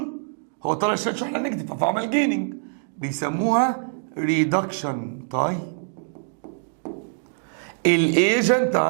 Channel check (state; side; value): silent; left; 62 dB below the other